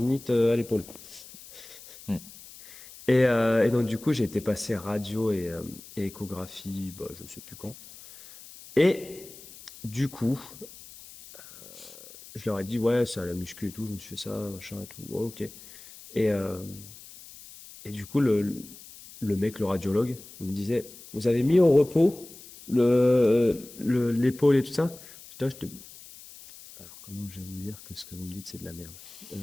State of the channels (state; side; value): noise; left; hiss, 18 dB below the sound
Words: à l'épaule. Mhm. Et donc, du coup, j'ai été passer radio et échographie, bah, je sais plus quand. Et du coup, je leur ai dit, ouais, c'est à la muscu et tout, je me suis fait ça, machin et tout. Ouais, ok. Et, euh, et du coup, le mec, le radiologue, il me disait, vous avez mis au repos l'épaule et tout ça? Putain, alors, comment je vais vous dire que ce que vous me dites, c'est de la merde?